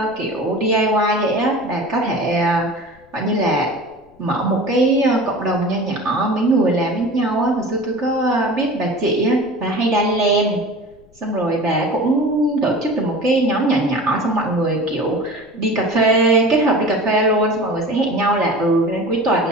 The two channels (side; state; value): left; noise; rumble, 29 dB below the sound